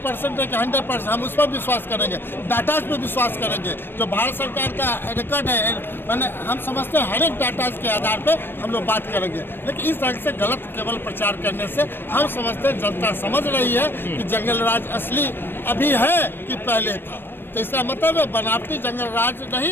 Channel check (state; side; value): late; right; 0.099 ms